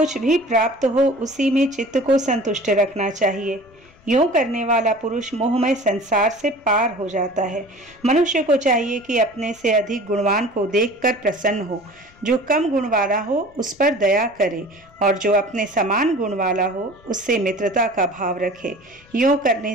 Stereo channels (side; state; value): left; noise; rumble, 28 dB below the sound